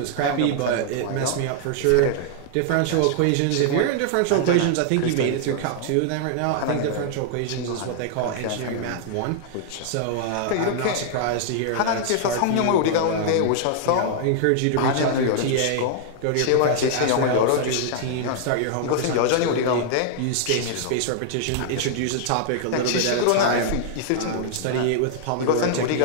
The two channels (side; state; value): both; different; correlation -0.01